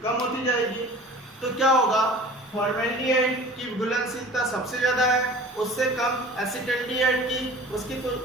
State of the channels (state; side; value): normal; both; correlation 0.43